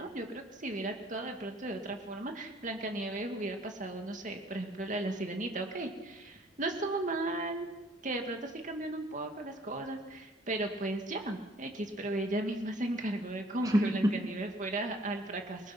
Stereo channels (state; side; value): normal; both; correlation 0.58